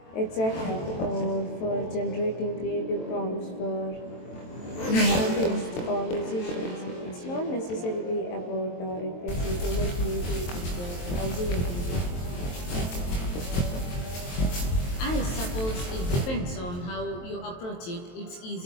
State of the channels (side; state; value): right; late; 23 ms